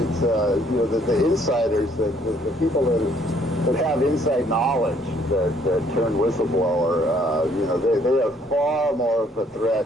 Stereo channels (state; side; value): normal; both; correlation 0.64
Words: the insiders, the people that have inside knowledge that turn whistleblower, they are far more of a